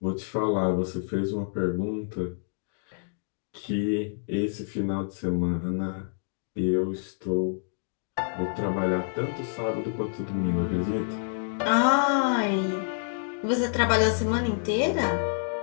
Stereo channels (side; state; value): right; silent; digital silence